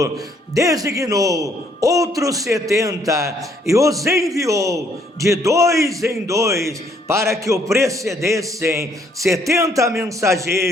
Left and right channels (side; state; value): both; normal; correlation 0.67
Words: designou outros 70 e os enviou de 2 em 2 para que o precedessem 70